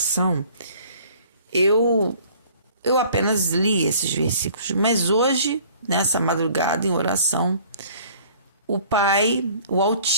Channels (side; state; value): both; inverted; correlation -0.53